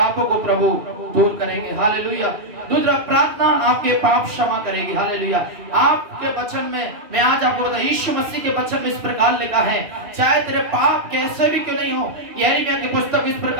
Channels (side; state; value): left; late; 2.7 ms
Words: को प्रभु दूर करेंगे। हालेलुया। दूसरा, प्रार्थना आपके पाप क्षमा करेगी। हालेलुया। आपके वचन में, मैं आज आपको बता, यीशु मसीह के वचन में इस प्रकार लिखा है, चाहे तेरे पाप कैसे भी क्यों नहीं हो, यिर्मयाह की पुस्तक इस